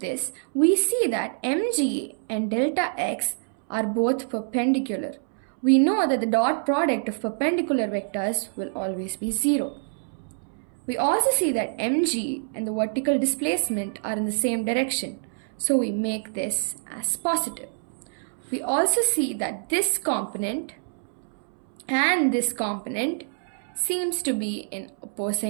we see that mg and delta x are both perpendicular. We know that the dot product of perpendicular vectors will always be 0. We also see that mg and the vertical displacement are in the same direction, so we make this as positive. We also see that this component and this component seems to be in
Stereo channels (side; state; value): left; silent; 61 dB below the other